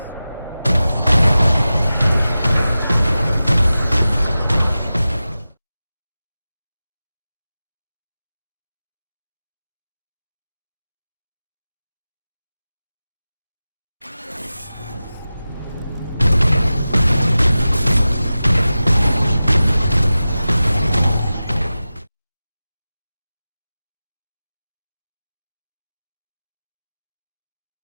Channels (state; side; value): inverted; both; correlation -0.95